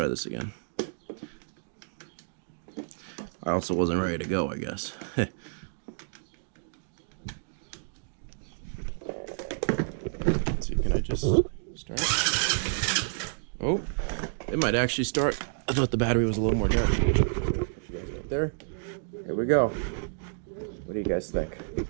this again. I also wasn't ready to go, I guess. Let's see, can I just start? Oh, it might actually start. I thought the battery was a little more dark. Put you guys right there. Here we go. What do you guys think?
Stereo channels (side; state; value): left; silent; digital silence